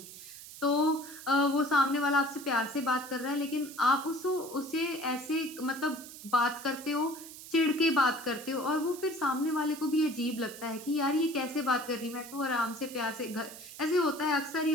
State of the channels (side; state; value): right; noise; hiss, 15 dB below the sound